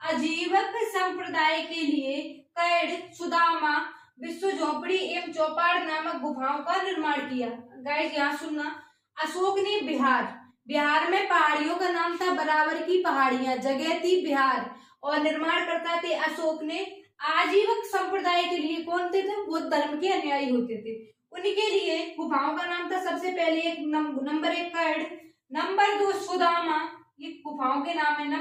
आजीवक संप्रदाय के लिए कैड, सुदामा, विश्व झोपड़ी एवं चौपाड़ नामक गुफाओं का निर्माण किया। गाइस यहाँ सुनना, अशोक ने बिहार में पहाड़ियों का नाम था बराबर की पहाड़ियां, जगह थी बिहार, और निर्माण करता थे अशोक ने आजीवक संप्रदाय के लिए। कौन थे? बौद्ध धर्म के अनुयायी होते थे, उनके लिए गुफाओं का नाम था सबसे पहले नंबर 1 कैड, नंबर 2 सुदामा, ये गुफाओं के नाम है,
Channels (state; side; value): identical; both; correlation 1.00